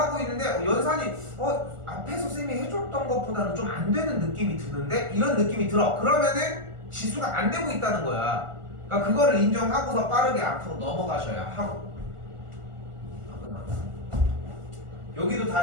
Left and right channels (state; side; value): late; left; 1.4 ms